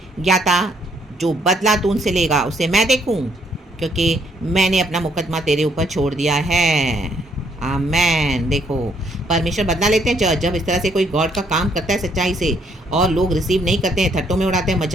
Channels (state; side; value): normal; both; correlation 0.69